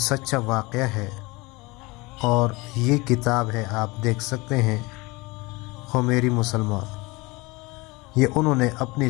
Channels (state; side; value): quieter; right; 24.0 dB